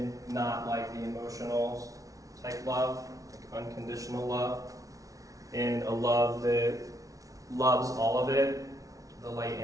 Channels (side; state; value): left; late; 0.17 ms